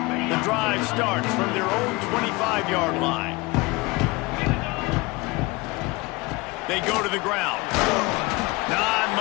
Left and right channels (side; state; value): right; quieter; 23.9 dB